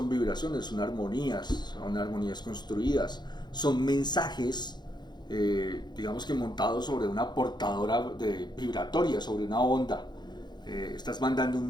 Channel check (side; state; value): right; late; 0.21 ms